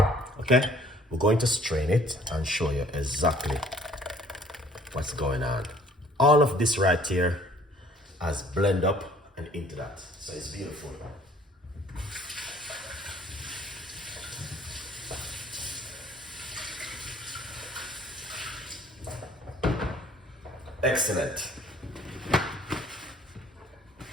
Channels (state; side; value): normal; both; correlation 0.56